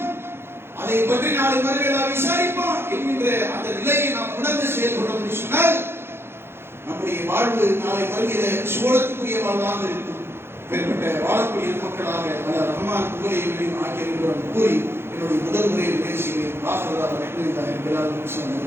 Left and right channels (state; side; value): late; left; 0.11 ms